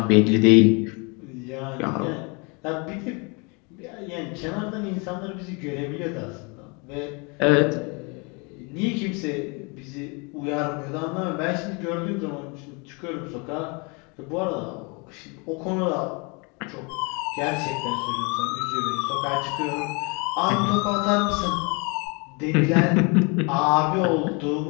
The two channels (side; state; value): right; quieter; 31.2 dB